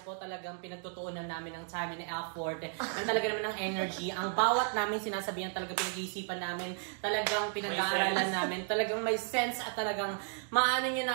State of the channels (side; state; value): left; silent; 55 dB below the other